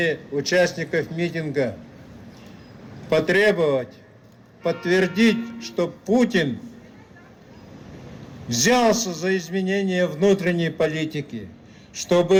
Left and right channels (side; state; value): both; identical; correlation 1.00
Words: участников митинга потребовать, подтвердить, что Путин взялся за изменение внутренней политики,